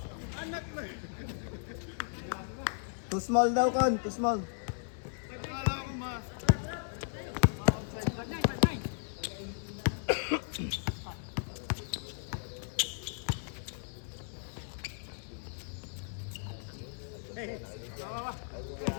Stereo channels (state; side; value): silent; right; digital silence